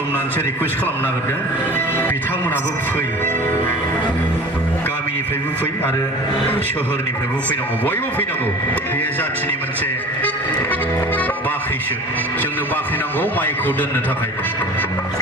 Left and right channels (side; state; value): both; normal; correlation 0.40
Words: रिकुवेस्ट खालामनो नागिरदों बिथांमोनाबो फै गामिनिफ्रायबो फै आरो सोहोरनिफ्रायबो फैनांगौ बयबो फैनांगौ बेयो जाथिनि मोनसे बाख्रिसो जोंनो बाख्रि नांगौ माइखौ दोननो थाखाय